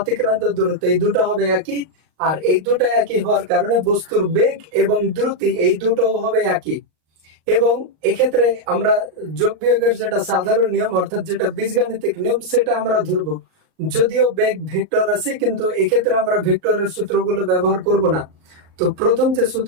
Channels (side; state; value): left; late; 38 ms